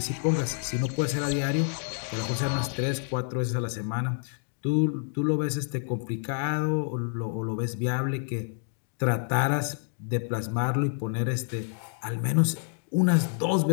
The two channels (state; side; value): silent; right; 57 dB below the other